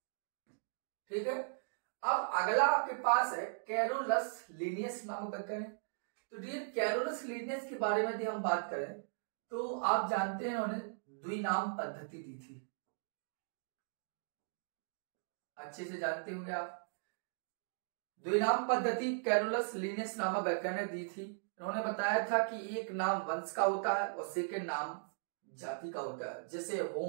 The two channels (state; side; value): silent; left; digital silence